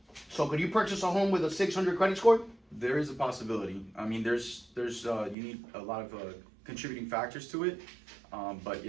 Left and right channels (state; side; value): drops out; left; at 5.4 s